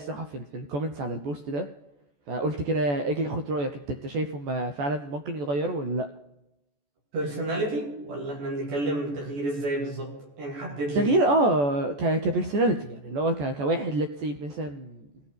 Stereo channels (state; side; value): late; left; 14 ms